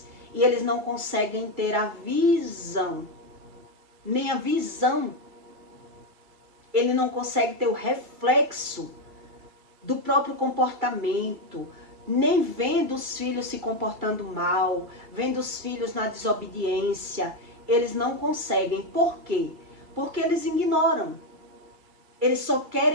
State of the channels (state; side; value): late; left; 2.3 ms